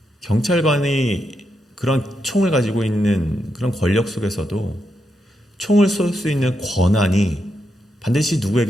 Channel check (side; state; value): both; normal; correlation 0.83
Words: 경찰관이 그런 총을 가지고 있는 그런 권력 속에서도 총을 쏠 수 있는 권한이 반드시